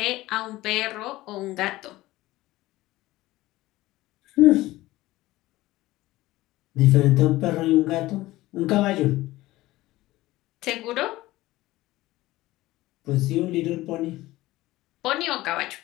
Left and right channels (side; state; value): right; quieter; 17.7 dB